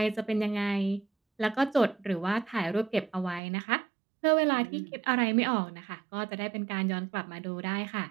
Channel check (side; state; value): left; drops out; at 3.4 s